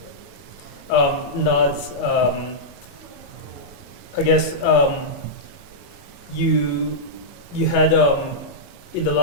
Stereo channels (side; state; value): right; late; 15 ms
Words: Naz, I guess you had in the